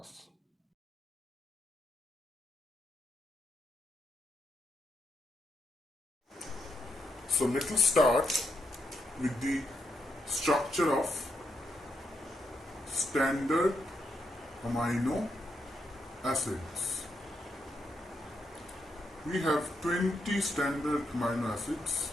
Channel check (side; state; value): both; normal; correlation 0.80